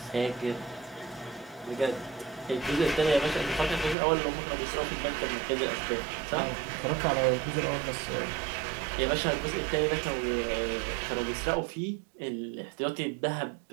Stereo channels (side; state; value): left; drops out; at 4.0 s